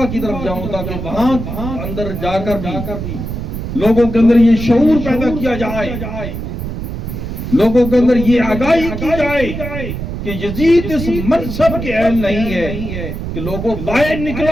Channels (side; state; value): right; noise; rumble, 6 dB below the sound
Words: کی طرف جاؤں تاکہ وہاں اندر جا کر بھی لوگوں کے اندر یہ شعور پیدا کیا جائے، لوگوں کے اندر یہ آگاہی کی جائے کہ یزید اس منصب کے اہل نہیں ہے کہ لوگوں باہر